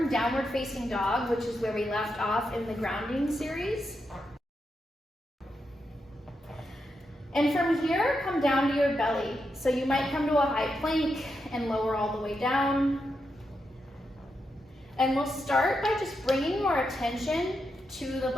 downward facing dog, which is where we left off in the grounding series. And from here, come down to your belly. So you might come to a high plank and lower all the way down. And we'll start by just bringing more attention to the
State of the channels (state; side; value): normal; both; correlation 0.85